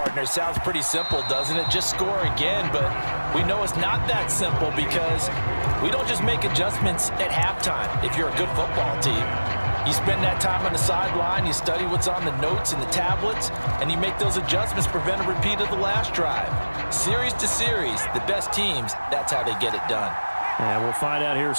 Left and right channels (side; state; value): both; inverted; correlation -1.00